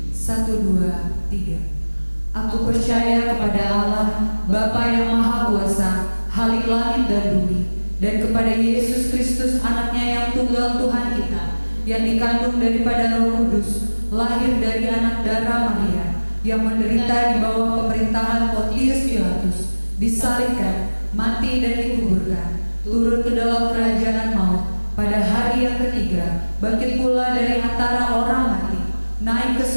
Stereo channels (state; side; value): inverted; both; correlation -1.00